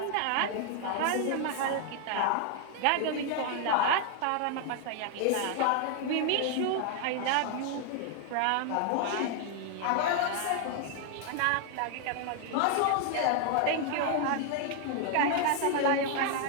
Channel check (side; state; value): both; different; correlation 0.00